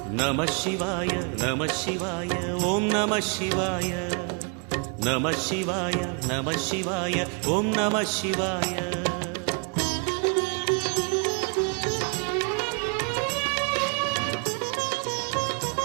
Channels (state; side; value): quieter; left; 37.4 dB